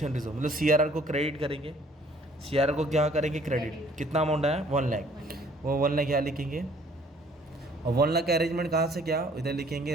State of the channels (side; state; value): both; normal; correlation 0.58